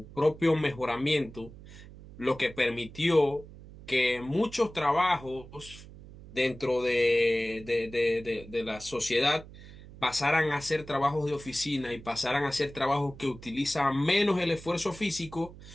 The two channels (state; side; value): noise; right; hum, 17 dB below the sound